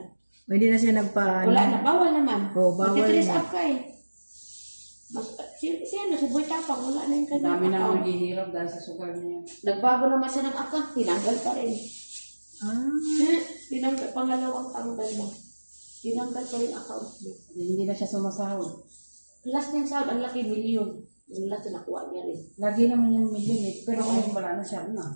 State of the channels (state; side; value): inverted; both; correlation -1.00